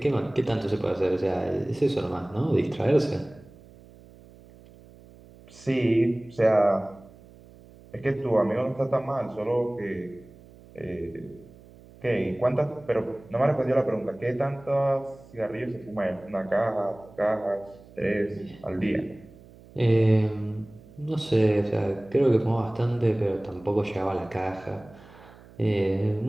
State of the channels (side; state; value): right; noise; hum, 23 dB below the sound